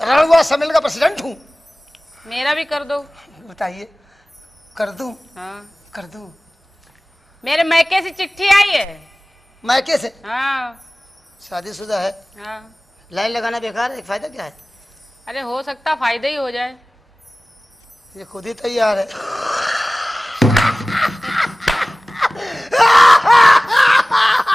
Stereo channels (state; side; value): normal; both; correlation 0.98